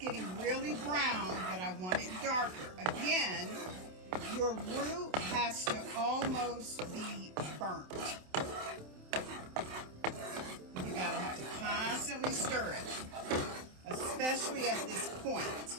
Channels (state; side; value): late; left; 27 ms